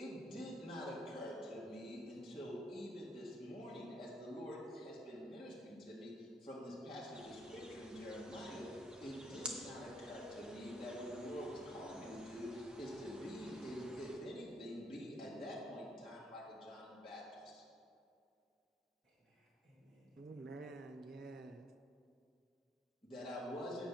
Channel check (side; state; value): both; normal; correlation 0.69